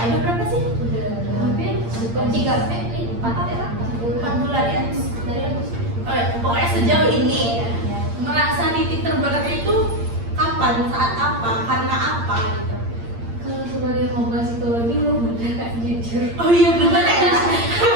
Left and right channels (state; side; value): late; left; 8.7 ms